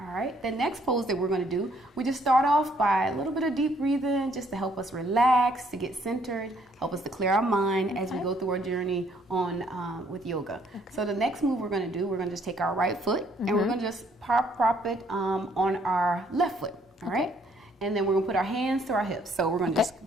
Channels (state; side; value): normal; both; correlation 0.66